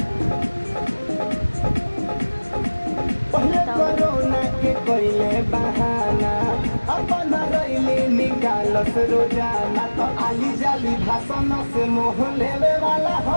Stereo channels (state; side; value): inverted; both; correlation -1.00